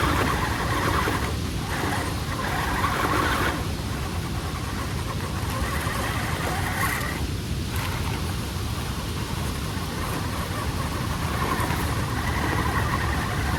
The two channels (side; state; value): both; identical; correlation 1.00